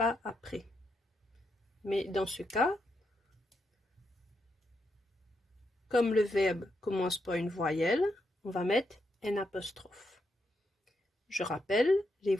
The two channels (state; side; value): normal; both; correlation 0.82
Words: après. Mais dans ce cas, comme le verbe commence par une voyelle, on va mettre un apostrophe. Je rappelle, les